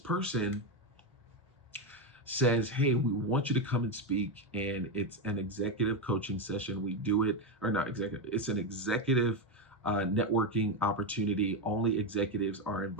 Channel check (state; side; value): normal; both; correlation 0.10